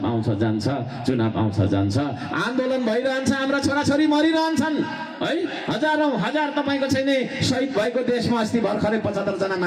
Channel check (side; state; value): both; identical; correlation 1.00